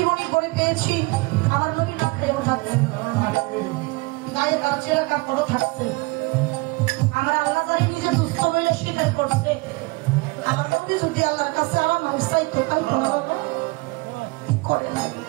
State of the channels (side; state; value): left; quieter; 25.4 dB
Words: পড়ে পেয়েছি, আমার নবী না খেয়েও থাকছে, গায়ে গাছেরা কাপড়ও থাকছে, আমার আল্লাহ জানি নিজে দুস্থ মিলে স্বীকার করছে। আমার নবী যদি আল্লাহর কাছে আমার মানুষ চাইতো তাই করে নাই।